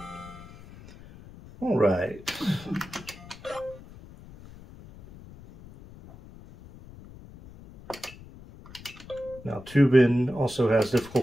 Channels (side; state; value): left; noise; rumble, 19 dB below the sound